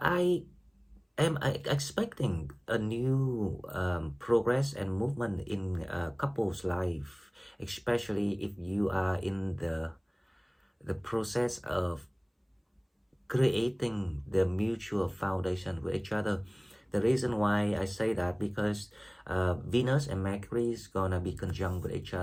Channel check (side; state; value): both; identical; correlation 1.00